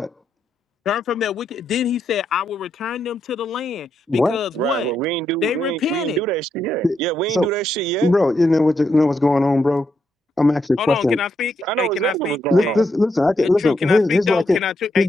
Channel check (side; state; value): both; normal; correlation 0.80